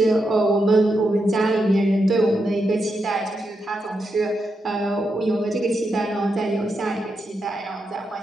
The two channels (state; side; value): normal; both; correlation 0.85